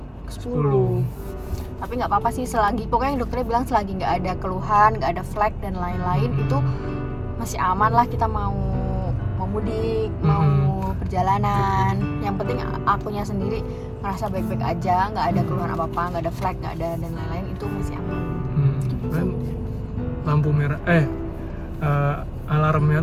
10. Tapi nggak apa-apa sih, selagi pokoknya dokternya bilang selagi nggak ada keluhan, nggak ada flek dan lain-lain, itu masih aman lah. Kita mau mudik, mau perjalanan, yang penting akunya sendiri merasa baik-baik aja, nggak ada keluhan apa-apa, nggak ada flek, nggak ada dan lain-lain, itu masih aman. Kan lampu merah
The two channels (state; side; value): identical; both; correlation 1.00